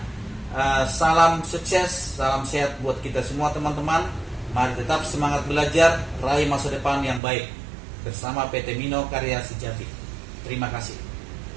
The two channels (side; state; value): left; drops out; at 7.2 s